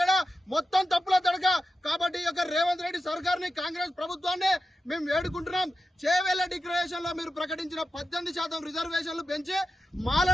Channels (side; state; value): both; normal; correlation 0.91